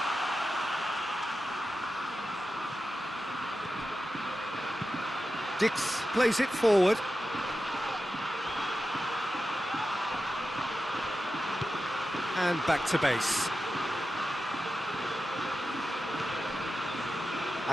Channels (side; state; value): both; normal; correlation 0.92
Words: Dix plays it forward. And back to base.